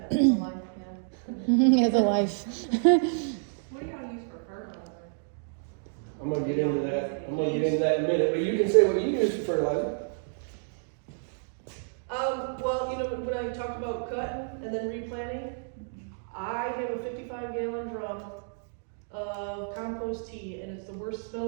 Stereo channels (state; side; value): silent; left; digital silence